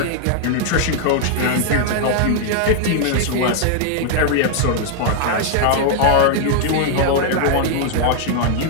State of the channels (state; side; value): different; both; correlation 0.00